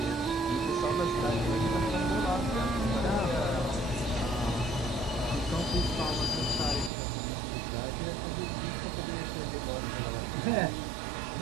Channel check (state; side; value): drops out; left; at 6.9 s